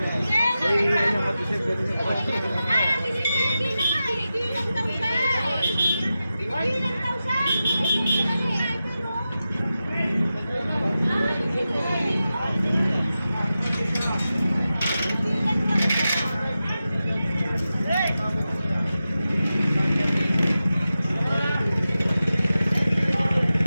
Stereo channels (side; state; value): both; inverted; correlation -0.92